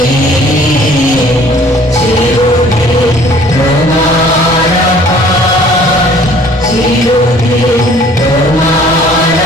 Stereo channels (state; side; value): normal; both; correlation 0.54